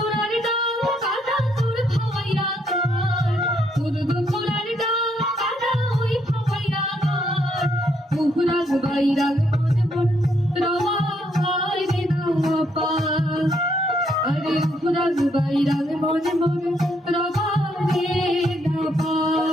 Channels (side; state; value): both; normal; correlation 0.73